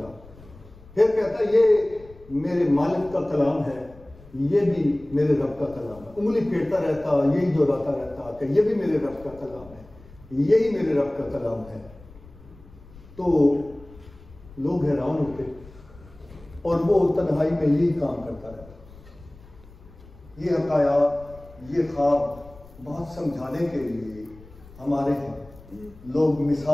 پھر کہتا یہ میرے مالک کا کلام ہے، یہ بھی میرے رب کا کلام ہے، انگلی پھیرتا رہتا، یہی دہراتا رہتا کہ یہ بھی میرے رب کا کلام ہے، یہی میرے رب کا کلام ہے۔ تو لوگ حیران ہوتے، اور وہ تنہائی میں یہی کام کرتا رہتا۔ یہ حکایات، یہ خواب بہت سمجھانے کے لیے ہمارے ہاں لوگ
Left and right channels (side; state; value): left; noise; rumble, 22 dB below the sound